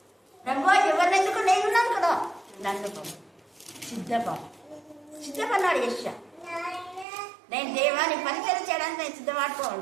ప్రభు ఎవరినెందుకు, నేనున్నాను కదా, నన్ను సిద్ధపన్నాడు యెషయా. నేను దేవాన్ని పరిచయం చేయడానికి నేను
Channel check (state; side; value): drops out; left; at 7.1 s